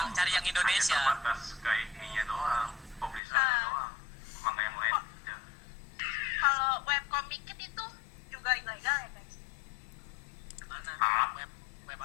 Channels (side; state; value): right; drops out; at 3.2 s